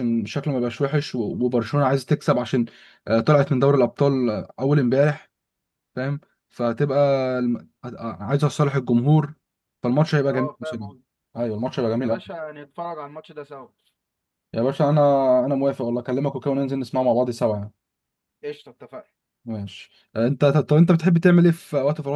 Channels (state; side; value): identical; both; correlation 1.00